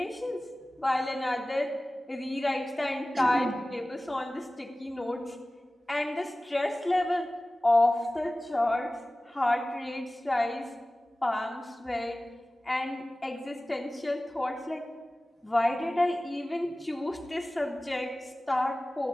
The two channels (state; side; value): normal; both; correlation 0.97